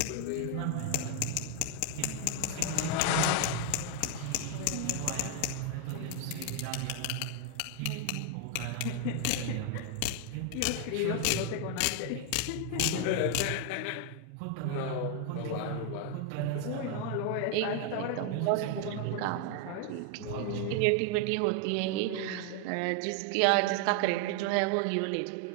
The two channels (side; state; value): both; different; correlation 0.00